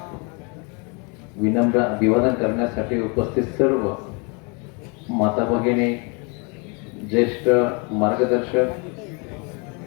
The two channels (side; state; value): right; quieter; 32.6 dB